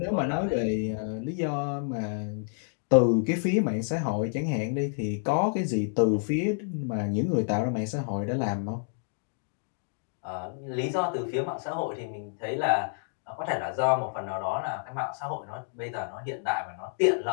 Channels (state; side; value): silent; right; digital silence